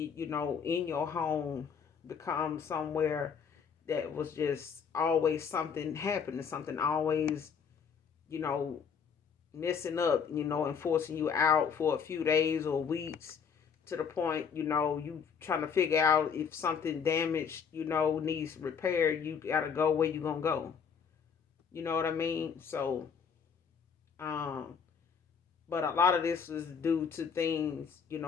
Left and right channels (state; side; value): quieter; right; 6.6 dB